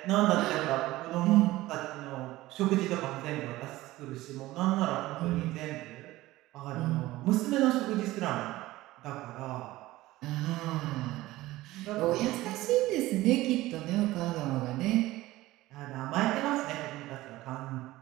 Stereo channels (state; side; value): quieter; left; 17.6 dB